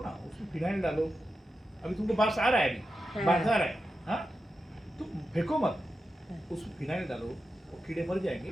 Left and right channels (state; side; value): normal; both; correlation 0.90